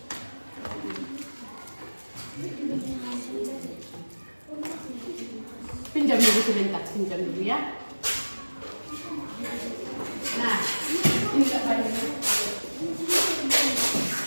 Pinjam dulu sebentar, pinjam dulu ya. Nah, ini tak banyak.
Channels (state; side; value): inverted; both; correlation -1.00